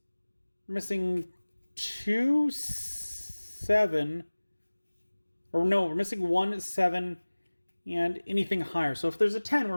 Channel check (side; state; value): both; inverted; correlation -1.00